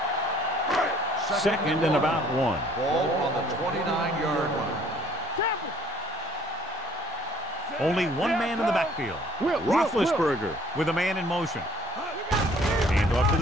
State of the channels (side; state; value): both; normal; correlation 0.58